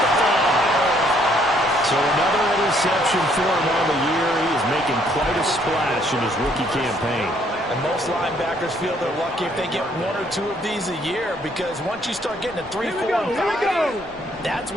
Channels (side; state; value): both; normal; correlation 0.66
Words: the 5. So another interception for him on the year. He is making quite a splash in his rookie campaign. And most linebackers feel they're lucky if they get 1 or 2 of these a year, because once you start getting a 3, 4, and 5, that's